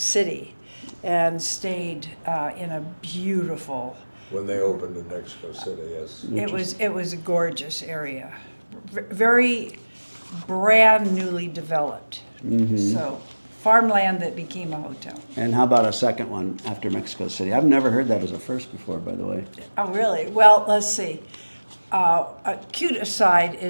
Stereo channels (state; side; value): inverted; both; correlation -1.00